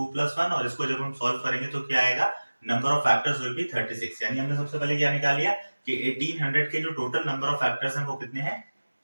और इसको जब हम सॉल्व करेंगे तो क्या आएगा? Number of factors will be 36। यानी हमने सबसे पहले क्या निकाल लिया कि 1800 के जो टोटल नंबर ऑफ फैक्टर्स हैं वो कितने हैं?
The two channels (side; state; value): both; inverted; correlation -1.00